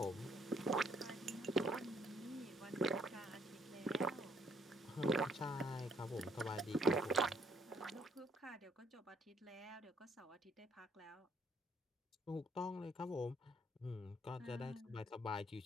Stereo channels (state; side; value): normal; both; correlation 0.66